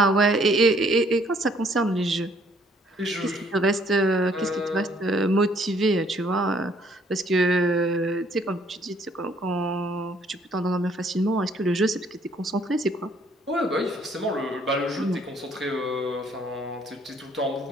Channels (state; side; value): normal; both; correlation 0.63